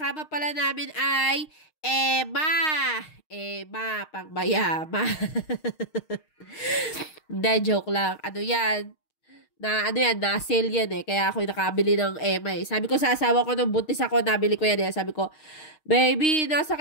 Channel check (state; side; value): late; right; 6.5 ms